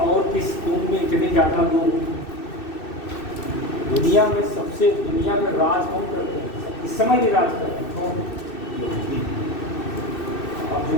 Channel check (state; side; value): late; right; 2.6 ms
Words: किस कौन में इतने ज़्यादा लोग दुनिया में सबसे, दुनिया में राज कौन करते हैं इस समय भी राज कर रहे हैं, कौन? अब जो